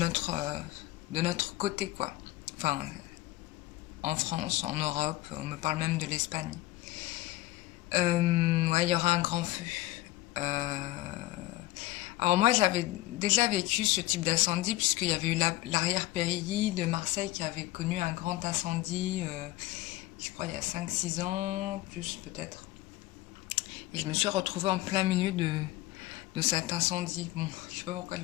côté quoi. Enfin, en France, en Europe, on me parle même de l'Espagne. Ouais, il y aura un grand feu. Euh, Alors moi, j'avais déjà vécu ce type d'incendie puisqu'il y avait eu l'arrière-périlly de Marseille qui avait connu un grand incendie, je crois il y a 5 6 ans, plus peut-être. Et je me suis retrouvée en plein milieu de cet incendie. Bon, je sais pas pourquoi je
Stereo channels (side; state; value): right; quieter; 17.3 dB